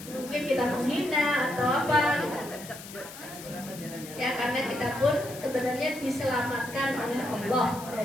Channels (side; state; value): left; noise; hiss, 14 dB below the sound